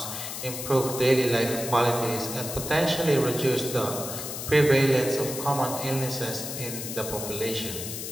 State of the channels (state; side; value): noise; left; hiss, 7 dB below the sound